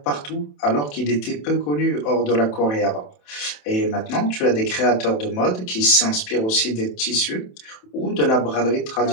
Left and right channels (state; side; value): late; right; 27 ms